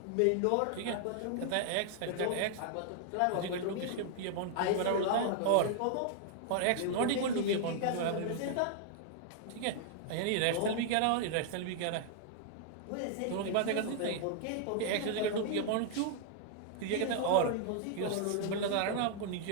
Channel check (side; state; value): both; different; correlation -0.01